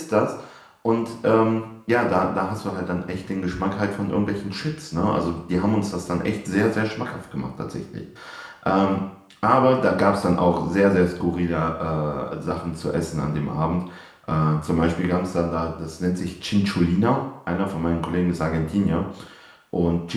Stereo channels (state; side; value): identical; both; correlation 1.00